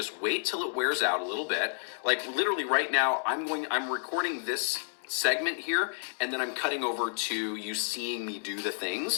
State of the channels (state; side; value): silent; right; digital silence